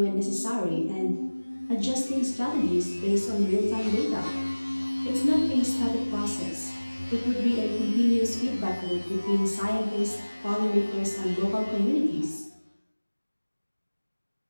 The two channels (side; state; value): both; inverted; correlation -1.00